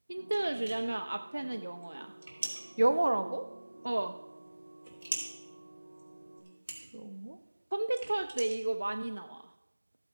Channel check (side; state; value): both; inverted; correlation -1.00